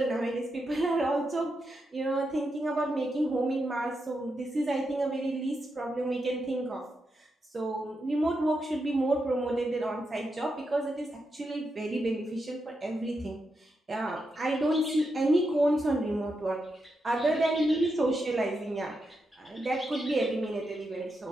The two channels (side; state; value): both; normal; correlation 0.85